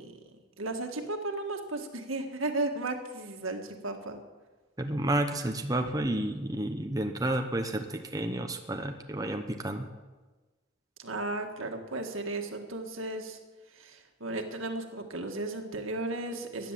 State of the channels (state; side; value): normal; both; correlation 0.34